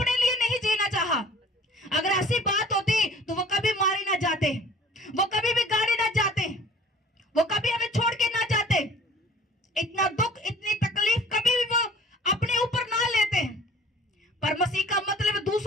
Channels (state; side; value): normal; both; correlation 0.49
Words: लिए नहीं जीना चाहा। अगर ऐसी बात होती तो वो कभी मारे ना जाते, वो कभी भी गाड़ी ना जाते, वो कभी हमें छोड़ के ना जाते। इतना दुख, इतनी तकलीफ कभी भी वो अपने ऊपर ना लेते। पर मसीह का मतलब